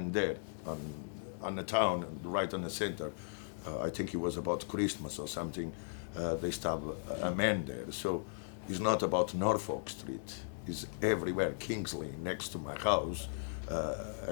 there on the town, right in the center. I think it was about Christmas or something. They stabbed a man there. So it's not about Norfolk Street. It's everywhere. Kingsley, next to my house,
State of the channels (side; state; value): right; silent; digital silence